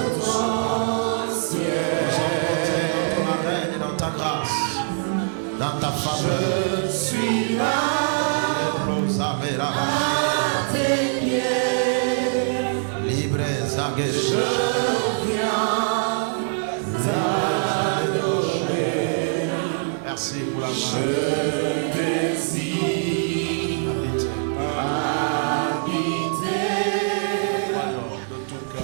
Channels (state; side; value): silent; left; digital silence